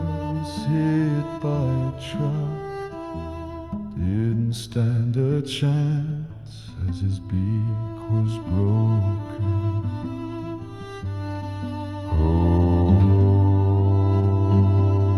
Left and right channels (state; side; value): identical; both; correlation 1.00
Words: was hit by a truck, didn't stand a chance as his beak was broken.